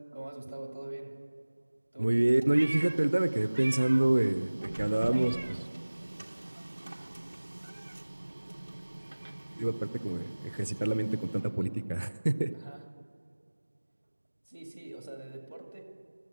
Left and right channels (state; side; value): inverted; both; correlation -1.00